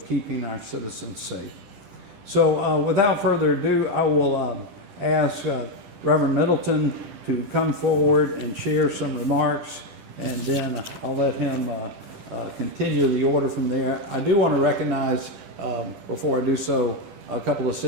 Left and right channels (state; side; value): late; left; 10 ms